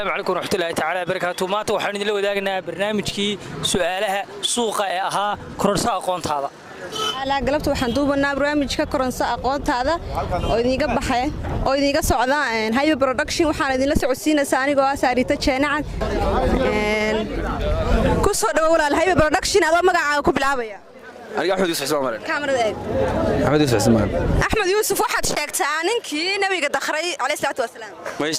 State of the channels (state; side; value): identical; both; correlation 1.00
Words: عليكم ورحمة الله تعالى وبركاته. maanta waxaan idin la wadaagnaa barnaamijkii su'aalaha suuqa ee ahaa kororsa aqoontaada. ala galabta waxaan duubanaa barnaamijka kororsa aqoontaada oo idinga baxay oo idinga socda Hayba Production waxaan idin la socodsiinaysaa anigoo ah Saarita Jeenacad ku soo dhawaad walaal Hayba Production adoo magacaaga ku bilaabaya aniga Axmed Yuusuf Ismaan kaamirada eeg Axmed Yuusuf Ismaan Axmed Yuusuf waxaad sheegtaa ninkii nabiga dakhray alayhi salaatu wasalaam ma is